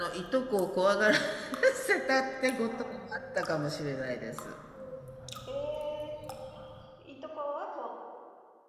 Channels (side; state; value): both; identical; correlation 1.00